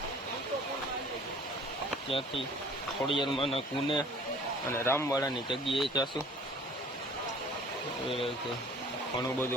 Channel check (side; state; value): both; normal; correlation 0.51